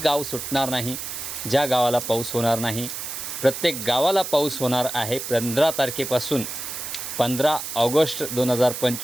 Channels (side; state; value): right; noise; hiss, 7 dB below the sound